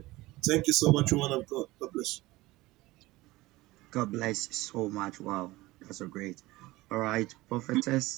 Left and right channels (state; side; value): quieter; left; 19.4 dB